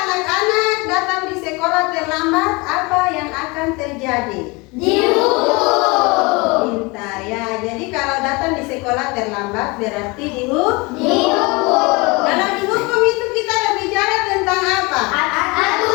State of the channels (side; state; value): right; quieter; 25.8 dB